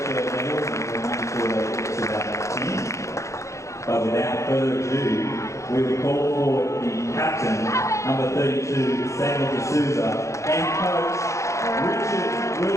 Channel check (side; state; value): right; late; 0.15 ms